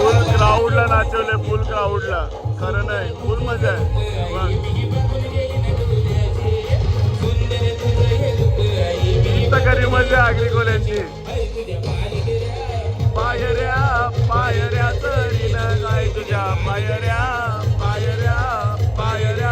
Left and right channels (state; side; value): identical; both; correlation 1.00